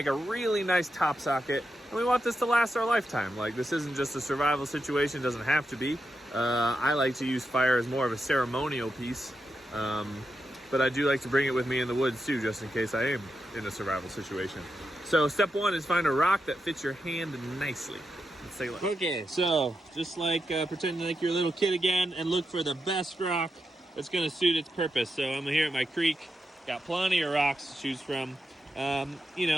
a really nice top socket, and we want this to last our lifetime. Like, this isn't just a survival situation, it doesn't have to be. I like to use fire as more of a ceremonial piece, but I do like to bring it with me in the woods too, just in case I am in a survival situation. So step 1 is find a rock that fits your hand nicely. Let's take a look. Okay, so just like pretending like you're a little kid again, and look for the best rock that's going to suit its purpose. So I'm here at my creek, got plenty of rocks to choose from. You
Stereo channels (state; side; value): normal; both; correlation 0.87